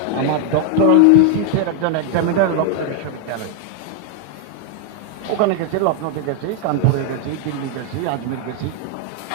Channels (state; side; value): different; both; correlation 0.00